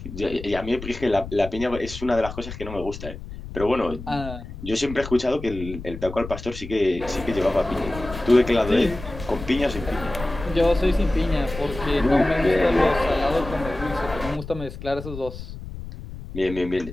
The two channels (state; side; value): noise; left; rumble, 11 dB below the sound